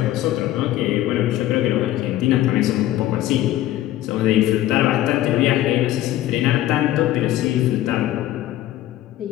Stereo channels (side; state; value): right; quieter; 14.2 dB